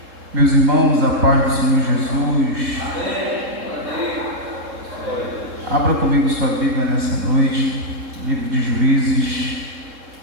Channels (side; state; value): left; late; 3.7 ms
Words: Meus irmãos, a paz do Senhor Jesus. Amém. Abra comigo sua Bíblia nessa noite, livro de Juízes,